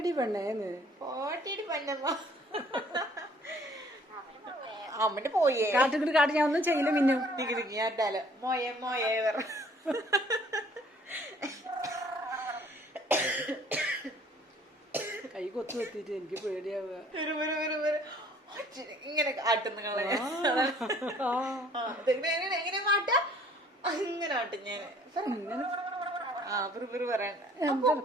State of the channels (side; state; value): both; normal; correlation 0.57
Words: പെണ്ണേന്ന് പോട്ടടി പൊന്നമ്മ. അമ്മന്റെ പോയേ കാട്ടുകിട്ട് കാട്ട് ഞാൻ ഒന്നും ചെയ്യില്ല മിന്നു ഞാറ്റാലോ മോയെ മോയെ പറ. കൈ കൊത്തു വെത്തിട്ട് എനിക്ക് പേടിയാവുക. ഇങ്ങനെ ആട്ടുന്ന എങ്ങനെ മാട്ട ഇങ്ങനെ ആട്ടും ഞാൻ